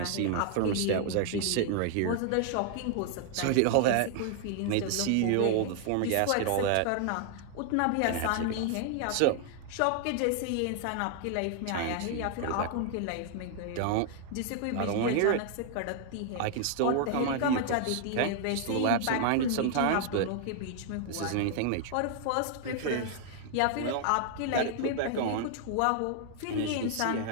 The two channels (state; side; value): different; both; correlation 0.00